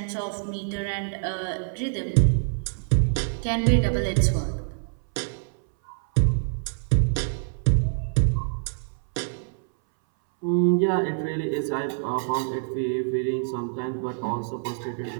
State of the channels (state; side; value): silent; left; 61 dB below the other